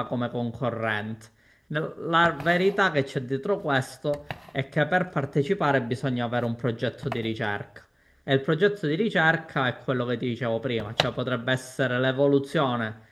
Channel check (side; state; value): both; identical; correlation 1.00